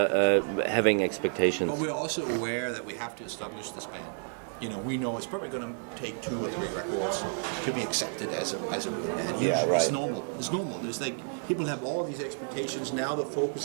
having expectations. But we're also aware that we have to establish this band. You know, we know it's probably going to take 2 or 3 records to be accepted as a real band. Usually, right. It's normal. It's normal. There's like people have all these expectations. Now the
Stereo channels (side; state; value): left; silent; 58 dB below the other